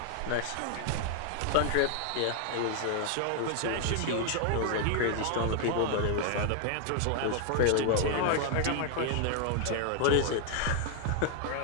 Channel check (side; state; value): both; different; correlation 0.00